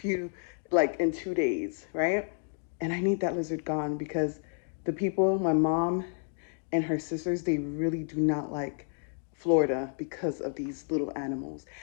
like in 2 days, right? And I need that lizard gone because the people, my mom and her sisters, they really do not like Florida because of these little animals.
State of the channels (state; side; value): silent; right; digital silence